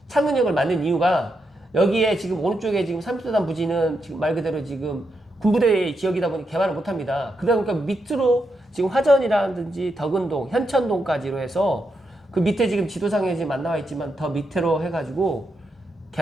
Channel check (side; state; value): both; normal; correlation 0.83